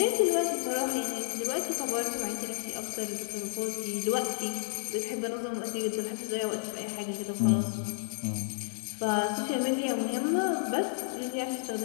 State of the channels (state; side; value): silent; right; digital silence